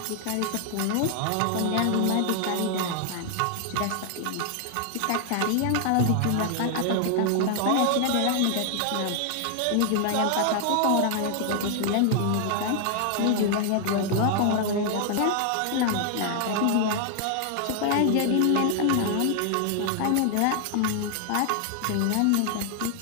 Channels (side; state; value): both; different; correlation 0.00